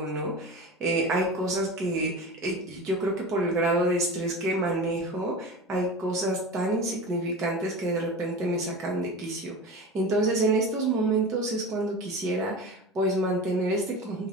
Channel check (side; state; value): both; normal; correlation 0.31